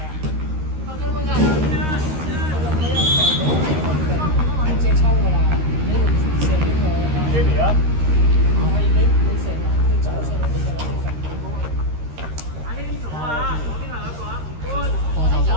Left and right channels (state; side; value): late; left; 13 ms